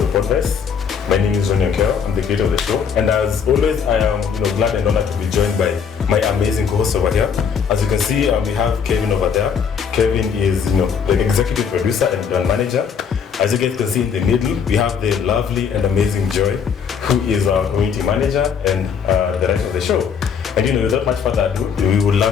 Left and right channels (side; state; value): right; quieter; 6.9 dB